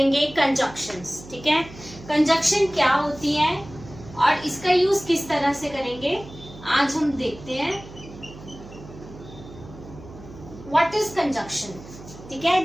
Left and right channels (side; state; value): right; noise; hum, 17 dB below the sound